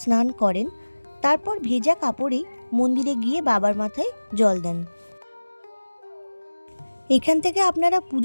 স্নান করেন, তারপর ভেজা কাপড়েই মন্দিরে গিয়ে বাবার মাথায় জল দেন। এখান থেকে আপনারা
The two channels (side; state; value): both; inverted; correlation -1.00